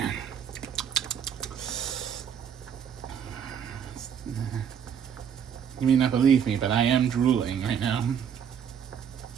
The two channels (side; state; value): left; quieter; 8.1 dB